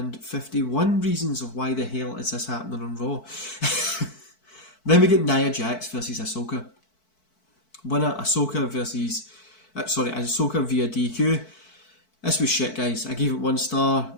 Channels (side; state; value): right; late; 4.6 ms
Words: reasons of why the hell is this happening on Raw. Then we get Nia Jax versus Ahsoka. winner, Ahsoka versus... Ahsoka via DQ. This was shit, guys. I gave it 1 star.